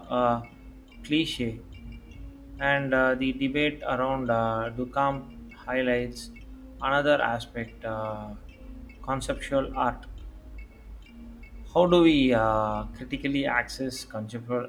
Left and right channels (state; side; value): identical; both; correlation 1.00